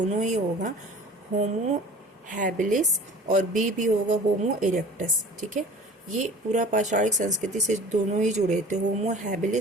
ही होगा, होमो हैबिलिस और बी भी होगा होमो इरेक्टस। ठीक है, ये पूरा पाषाणिक संस्कृति से दोनों ही जुड़े थे, होमो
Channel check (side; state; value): both; normal; correlation 0.43